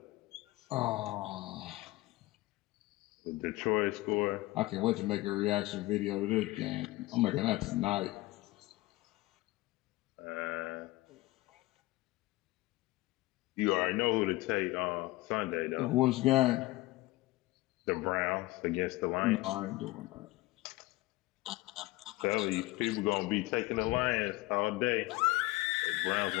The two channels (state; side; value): quieter; right; 19.9 dB